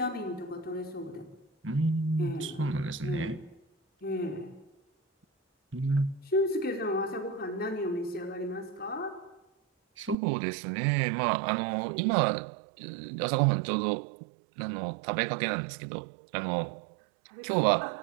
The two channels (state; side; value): drops out; left; at 10.2 s